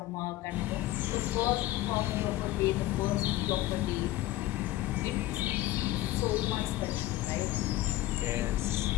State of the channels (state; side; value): quieter; right; 15.8 dB